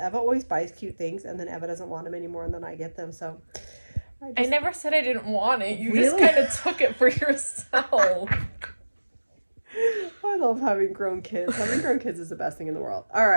always buys cute things, and then Eva doesn't want them anymore, and then I get them, so. I never said I didn't want it. You Really? just kind of took it for yourself. I love having grown kids. Having grown kids is the best thing in the world. All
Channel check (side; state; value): both; inverted; correlation -1.00